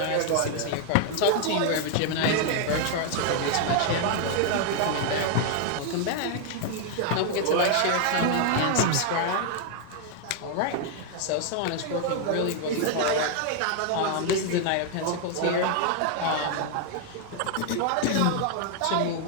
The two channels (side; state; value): both; different; correlation 0.00